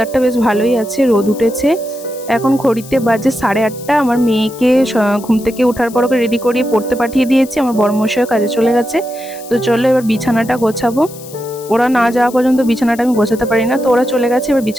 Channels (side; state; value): left; noise; hiss, 18 dB below the sound